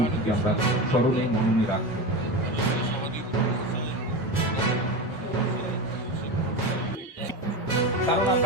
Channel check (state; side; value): normal; both; correlation 0.22